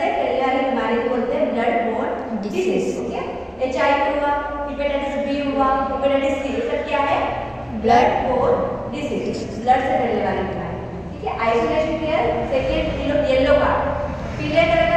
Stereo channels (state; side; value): identical; both; correlation 1.00